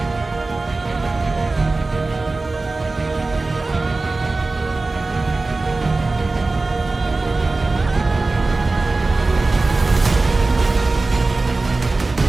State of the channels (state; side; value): quieter; left; 3.4 dB